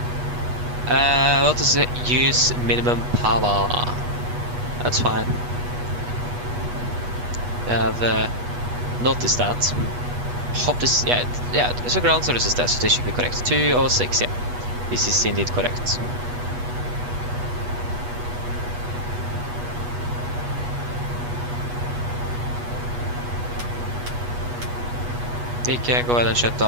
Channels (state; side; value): late; left; 8.2 ms